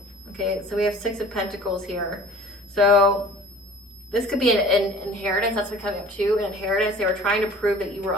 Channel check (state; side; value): normal; both; correlation 0.45